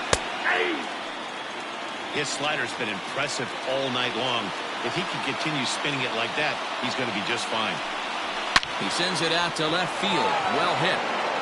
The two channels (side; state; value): both; identical; correlation 1.00